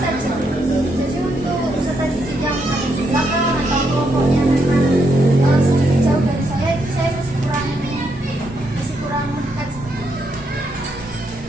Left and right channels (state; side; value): normal; both; correlation 0.78